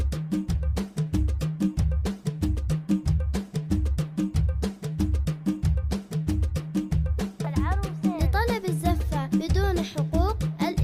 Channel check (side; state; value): both; identical; correlation 1.00